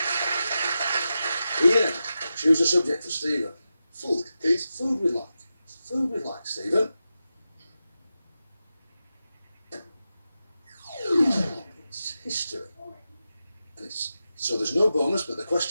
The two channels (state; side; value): inverted; both; correlation -0.91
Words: Ian, choose a subject for Stephen. Food, please. Food we'd like. Food we'd like, Stephen. It's history. And so there's no bonus, but the